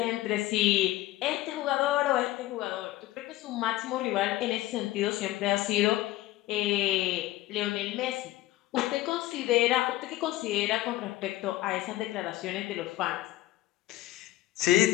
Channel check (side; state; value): right; quieter; 16.4 dB